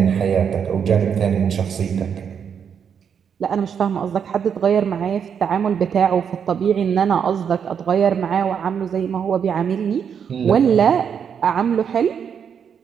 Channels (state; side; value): quieter; left; 7.5 dB